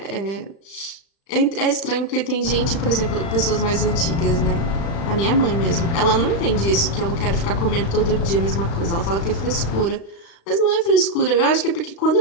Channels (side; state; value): right; late; 36 ms